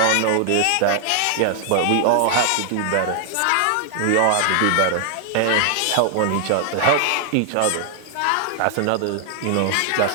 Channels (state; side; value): different; both; correlation 0.00